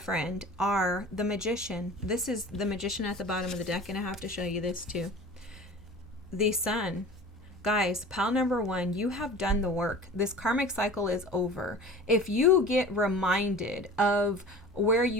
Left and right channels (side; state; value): both; normal; correlation 0.39